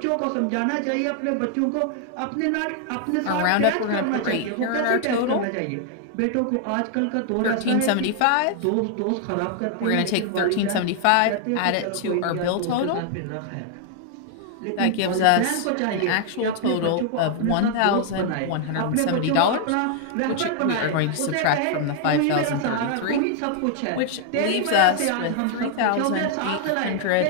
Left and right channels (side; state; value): both; different; correlation 0.00